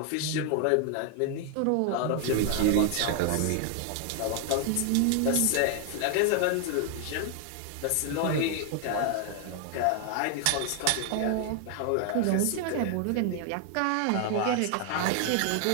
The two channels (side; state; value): both; different; correlation 0.00